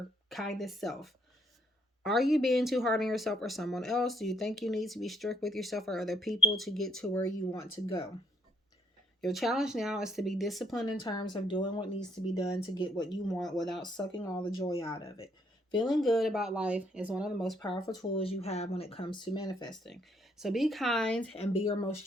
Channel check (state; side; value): normal; both; correlation 0.68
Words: kindest self. Are you being too hard on yourself or someone else? Do you think you need to be strict with yourself or other people to get to where you want to go? Your challenge now is to be disciplined in terms of doing what needs to be done to get what you want without sucking all the joy out of it. Feeling good about life is one of the most powerful tools you have when it comes to manifesting. So be kind and be your most